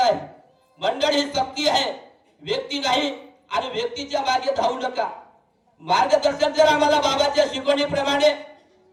आहे. मंडळ ही शक्ती आहे, व्यक्ती नाही. आणि व्यक्तीच्या मागे धावू नका. मार्गदर्शक जर आम्हाला बाबाच्या शिकवणीप्रमाणे,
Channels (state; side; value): identical; both; correlation 1.00